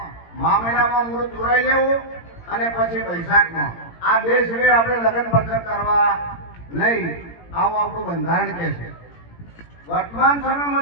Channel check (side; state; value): right; late; 18 ms